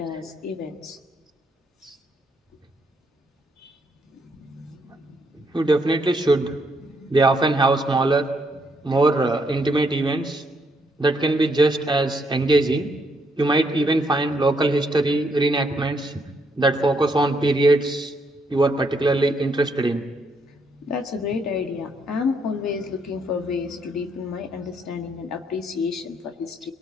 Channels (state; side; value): normal; both; correlation 0.74